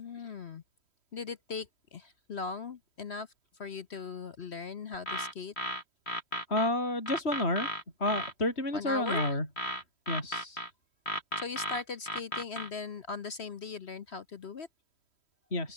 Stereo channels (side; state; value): right; late; 3.1 ms